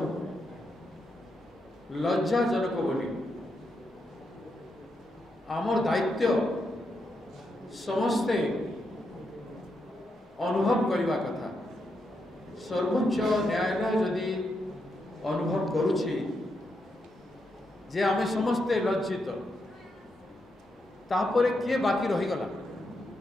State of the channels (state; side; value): normal; both; correlation 0.83